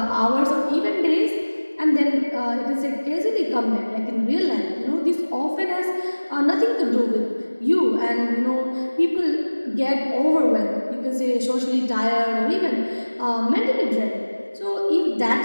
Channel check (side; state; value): both; inverted; correlation -1.00